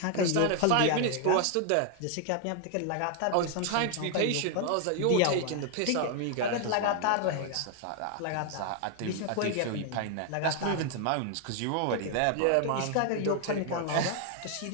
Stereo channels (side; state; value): both; different; correlation 0.00